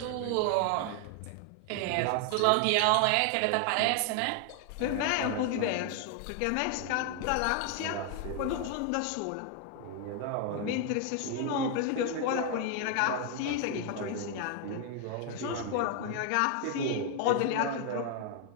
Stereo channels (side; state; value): both; different; correlation 0.00